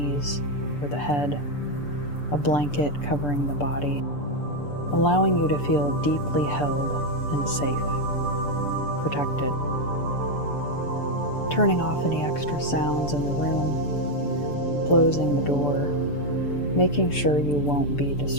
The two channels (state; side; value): late; right; 6.8 ms